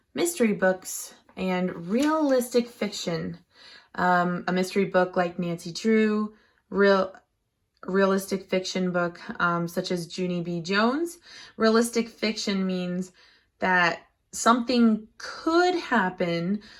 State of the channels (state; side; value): identical; both; correlation 1.00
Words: mystery books, and realistic fiction. A mystery book like Nancy Drew, realistic fiction book such as Junie B. Jones. Realistic fiction means that something could happen,